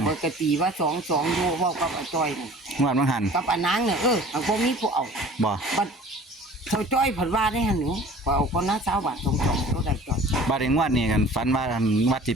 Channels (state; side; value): normal; both; correlation 0.46